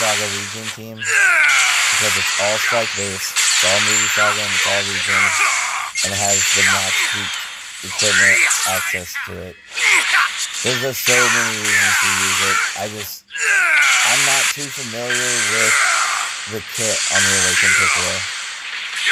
region team because it's all strike based, it's all movie saga, and it's all region, and it has the max peak equipment access to it. There's just so many reasons to use it. I'm not too familiar with the kit on the Awakened Piccolo.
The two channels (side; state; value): both; identical; correlation 1.00